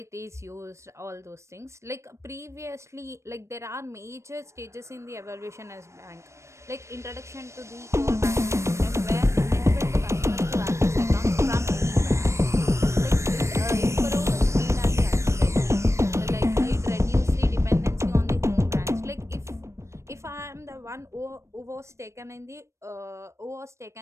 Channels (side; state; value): left; late; 0.14 ms